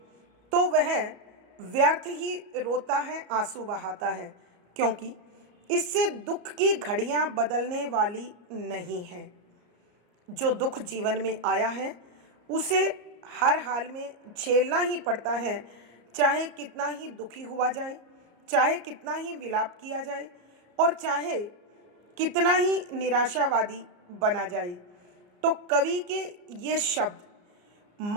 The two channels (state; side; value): late; left; 34 ms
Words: तो वह व्यर्थ ही रोता है, आंसू बहाता है, क्योंकि इससे दुख की घड़ियां बदलने वाली नहीं है। जो दुख जीवन में आया है उसे हर हाल में झेलना ही पड़ता है, चाहे कितना ही दुखी हुआ जाए, चाहे कितना ही विलाप किया जाए और चाहे कितना ही निराशावादी बना जाए। तो कवि के ये शब्द